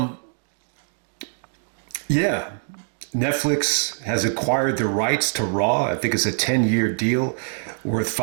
yeah, Netflix has acquired the rights to Raw. I think it's a 10-year deal worth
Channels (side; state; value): left; silent; 59 dB below the other